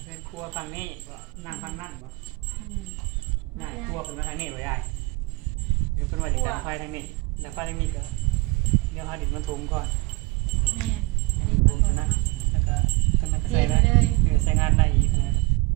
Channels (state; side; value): quieter; left; 23.9 dB